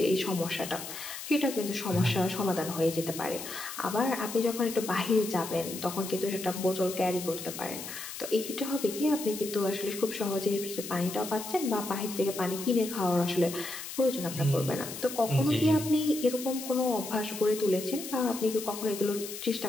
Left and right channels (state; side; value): noise; left; hiss, 9 dB below the sound